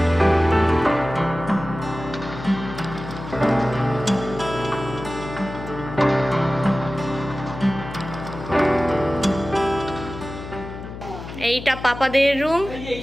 এইটা পাপাদের রুম,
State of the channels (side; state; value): left; noise; hum, 11 dB below the sound